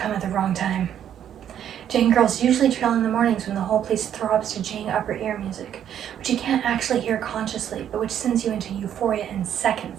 at the wrong time. Jane girls usually trail in the mornings when the whole place throbs to Jane upper ear music, which you can't actually hear consciously, but which sends you into euphoria in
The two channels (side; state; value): left; quieter; 9.8 dB